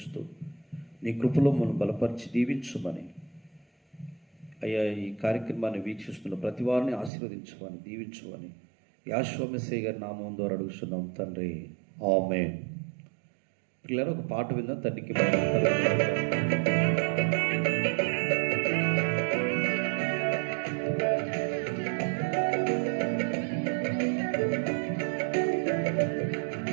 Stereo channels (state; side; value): drops out; left; at 7.1 s